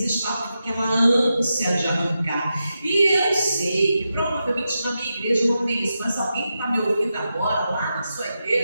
estão com aquela ânsia de arrancar. E eu sei que provavelmente na minha igreja não tem isso, mas alguém que está me ouvindo agora, lá na sua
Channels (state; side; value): inverted; both; correlation -0.89